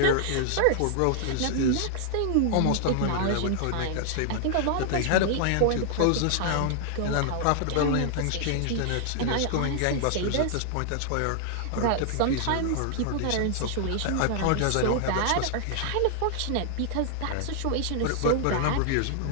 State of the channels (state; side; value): different; both; correlation 0.00